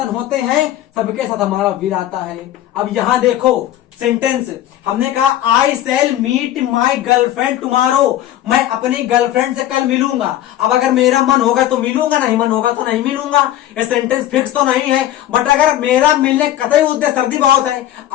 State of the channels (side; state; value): right; quieter; 13.0 dB